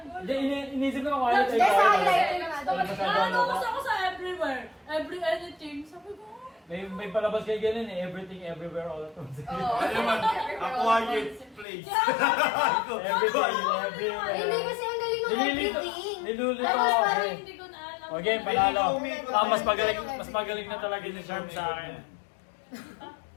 Hindi, inisip ko quiet. Hindi, sa highlighter nga doon. Nakatapos ako sa everywhere. Every anything. Sabi ko, May palabas kayo ganun eh. Everything, everywhere, all at once. Oo. Ano naman? A quiet place. Everything, everywhere. Hindi kasi ang galing ng everything. Nilulito Tapos ako parang eh. hindi ko na alam. Okay, panalo. Umikot Ah, na mas magaling na talaga ni Sharp sa akin.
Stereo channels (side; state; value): right; drops out; at 11.7 s